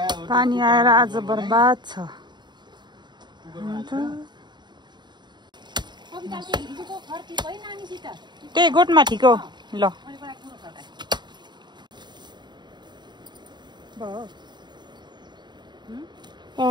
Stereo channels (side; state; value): left; late; 0.21 ms